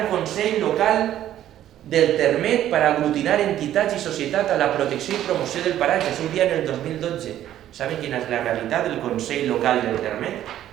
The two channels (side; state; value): left; quieter; 12.1 dB